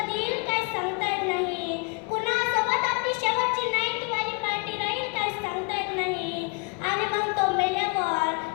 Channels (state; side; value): quieter; right; 34.2 dB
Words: येईल काय सांगता येत नाही. कुणासोबत आपली शेवटची नाईटवाली पार्टी राहील काय सांगता येत नाही. आणि मग तो मेल्यावर